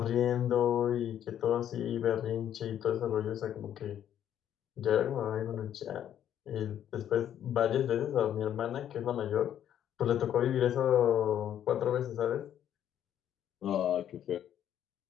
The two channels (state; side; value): quieter; right; 10.3 dB